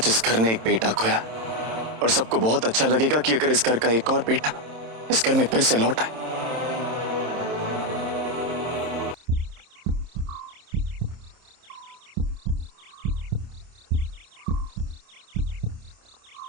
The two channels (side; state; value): left; late; 27 ms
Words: इस घर ने एक बेटा खोया और सबको बहुत अच्छा लगेगा कि अगर इस घर का एक और बेटा इस घर में फिर से लौट आए।